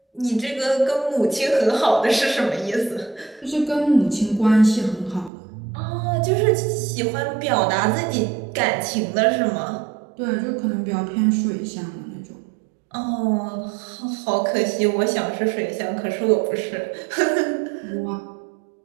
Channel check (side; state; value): left; drops out; at 5.3 s